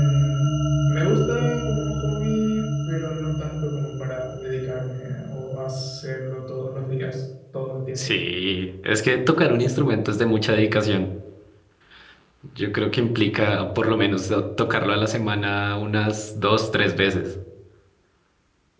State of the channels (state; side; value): identical; both; correlation 1.00